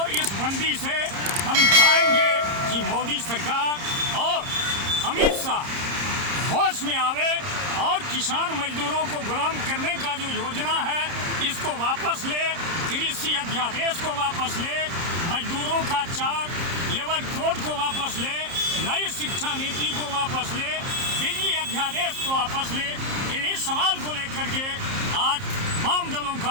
इस बंदी से हम चाहेंगे कि मोदी सरकार और अमित शाह होश में आवे और किसान मजदूरों को गुलाम करने का जो योजना है इसको वापस ले, कृषि अध्यादेश को वापस ले, मजदूरों का 4 लेबर कोड को वापस ले, नई शिक्षा नीति को वापस ले, बिजली अध्यादेश को वापस ले। इन्हीं सवाल को लेकर के आज वाम दलों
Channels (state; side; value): late; left; 30 ms